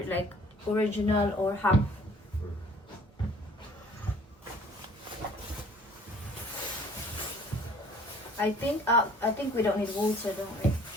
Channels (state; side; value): normal; both; correlation 0.53